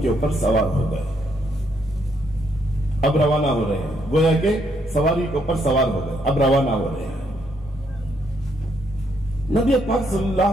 کے اوپر سوار ہو گئے، اب روانہ ہو رہے ہیں، گویا کہ سواری کے اوپر سوار ہو گئے، اب روانہ ہو رہے ہیں۔ نبی پاک صلی اللہ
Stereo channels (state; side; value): normal; both; correlation 0.74